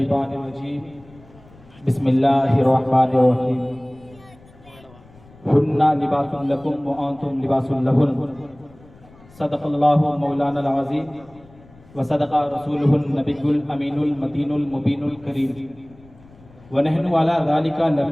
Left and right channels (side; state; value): left; noise; rumble, 25 dB below the sound